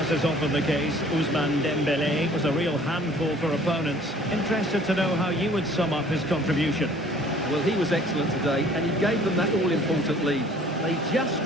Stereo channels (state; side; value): normal; both; correlation 0.53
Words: is often the case, Ousmane Dembélé was a real handful for opponents. Interested to know how you would sum up his contribution. Well, he was excellent today, and he gave them that all-important lead. They just